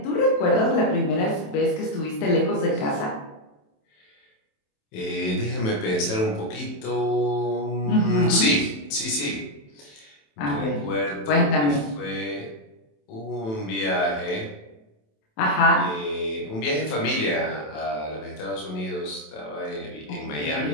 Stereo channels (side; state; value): right; late; 27 ms